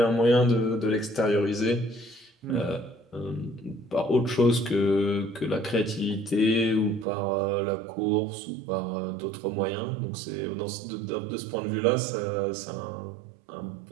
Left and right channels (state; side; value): drops out; left; at 7.1 s